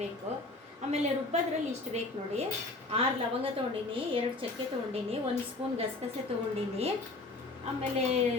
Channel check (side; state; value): right; quieter; 3.2 dB